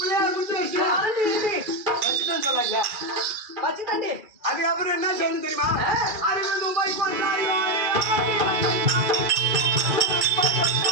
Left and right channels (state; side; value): late; left; 2.4 ms